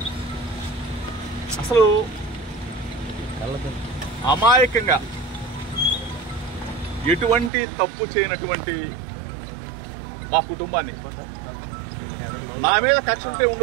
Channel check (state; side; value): drops out; left; at 7.5 s